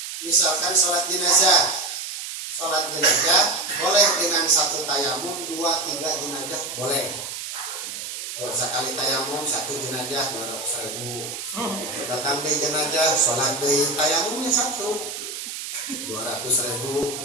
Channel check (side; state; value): right; noise; hiss, 7 dB below the sound